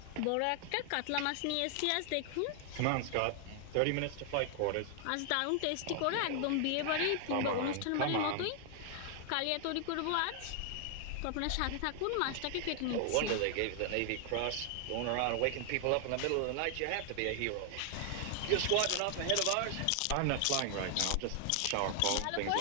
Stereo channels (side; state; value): both; different; correlation 0.00